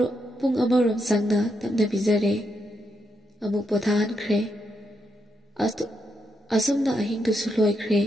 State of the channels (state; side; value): normal; both; correlation 0.81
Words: pung amarom sangna tamna bijare amuk pothan khre asumna ahing tu suloi khre